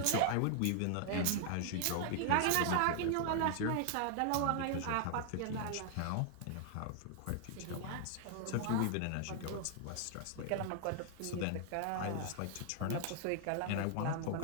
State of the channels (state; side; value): different; both; correlation 0.00